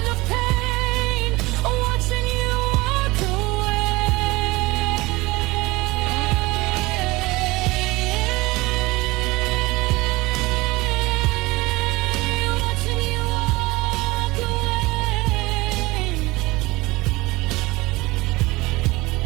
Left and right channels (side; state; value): left; quieter; 21.5 dB